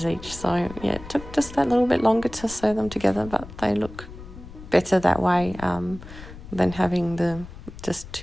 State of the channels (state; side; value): noise; left; rumble, 15 dB below the sound